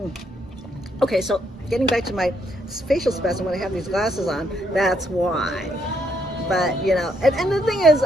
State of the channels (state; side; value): normal; both; correlation 0.74